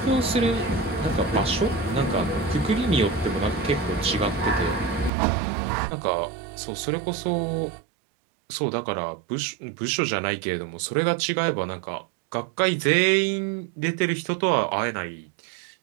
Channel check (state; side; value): drops out; left; at 5.1 s